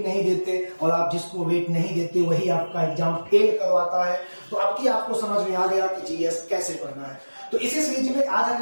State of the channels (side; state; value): both; inverted; correlation -1.00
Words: नहीं देते और आप जिसको वेट नहीं देते वही आपका एग्जाम फेल करवाता है। तो अब की आपको समझ में आ गया कि जीएस कैसे पढ़ना है। तो इसी सीरीज में आज